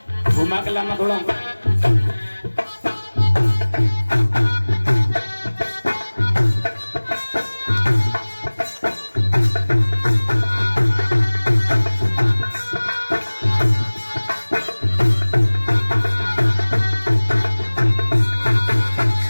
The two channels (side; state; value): both; inverted; correlation -1.00